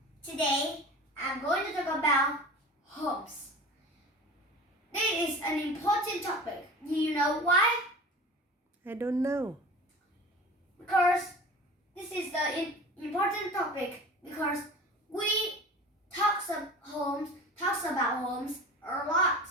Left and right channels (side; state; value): both; normal; correlation 0.37